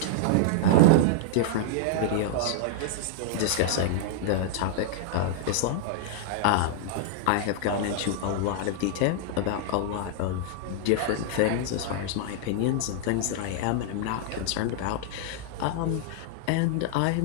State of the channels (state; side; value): different; both; correlation -0.01